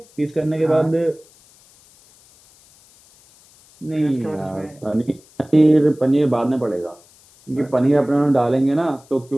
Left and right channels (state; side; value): noise; left; hiss, 28 dB below the sound